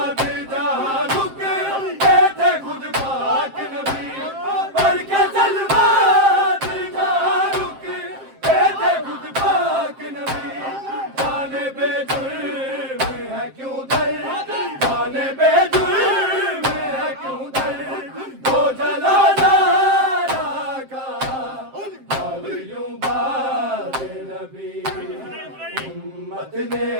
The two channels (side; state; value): left; late; 7.6 ms